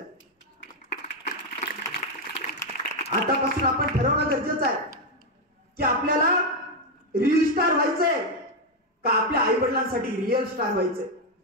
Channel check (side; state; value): both; normal; correlation 0.04